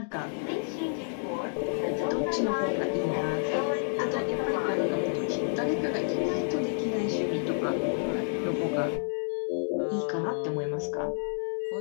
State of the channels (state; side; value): silent; right; digital silence